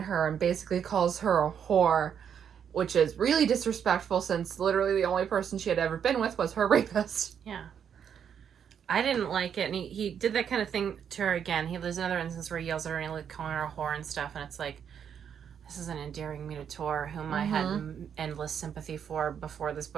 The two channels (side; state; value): left; quieter; 8.1 dB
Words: and basically calls her a whore, which is really disrespectful since literally the only person she had ever been with was her rapist. Yeah. I didn't like it, and he did that kind of thing to her again. There's another instance where he yells at her and like calling her a whore and stuff, and it's like, this isn't endearing me to Tor, whom I had endless sympathy for before this